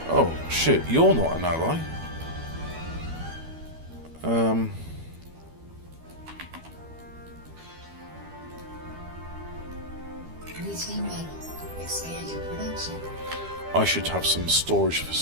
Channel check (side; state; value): left; late; 12 ms